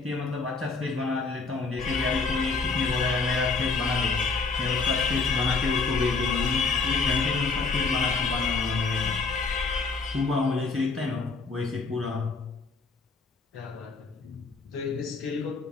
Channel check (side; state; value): right; quieter; 4.2 dB